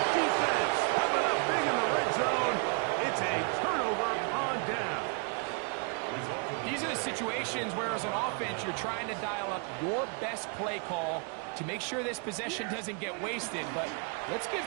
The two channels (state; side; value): quieter; left; 37.7 dB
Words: defense coming up big in the red zone. It's a turnover on down. These are the situations where, as an offense, you're trying to dial up your best play call to make sure this possession doesn't get wasted. But let's give